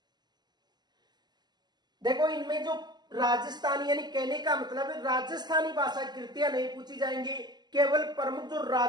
देखो, इनमें जो राजस्थानी यानी कहने का मतलब है राजस्थानी भाषा कृतियां नहीं पूछी जाएंगी, केवल प्रमुख जो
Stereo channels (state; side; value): late; left; 0.21 ms